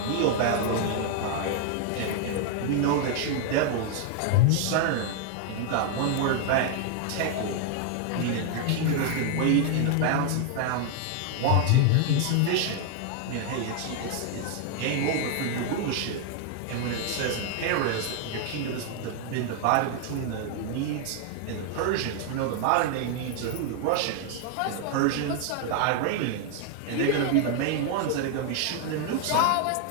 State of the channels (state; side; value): different; both; correlation 0.00